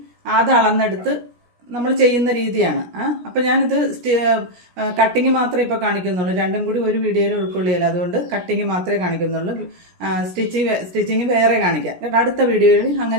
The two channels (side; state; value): left; late; 17 ms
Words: അത് അളന്നെടുത്ത് നമ്മൾ ചെയ്യുന്ന രീതിയാണ്. അപ്പൊ ഞാനിത് കട്ടിങ് മാത്രമേ ഇപ്പൊ കാണിക്കുന്നുള്ളൂ. രണ്ടും കൂടി ഒരു വീഡിയോയിൽ ഉൾക്കൊള്ളിയല്ല, അതുകൊണ്ട് കട്ടിങ് മാത്രമേ കാണിക്കുന്നുള്ളൂ. സ്റ്റിച്ചിങ് വേറെ കാണിക്കാം. അടുത്ത വീഡിയോയിൽ